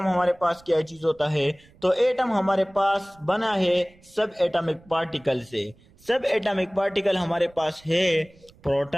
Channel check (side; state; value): right; noise; rumble, 28 dB below the sound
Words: हमारे पास क्या चीज होता है। तो एटम हमारे पास बना है सब एटॉमिक पार्टिकल से। सब एटॉमिक पार्टिकल हमारे पास है